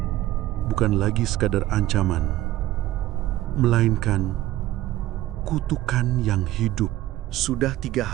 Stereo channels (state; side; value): quieter; left; 15.3 dB